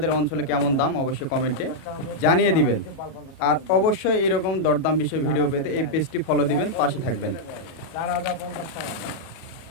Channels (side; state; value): right; late; 37 ms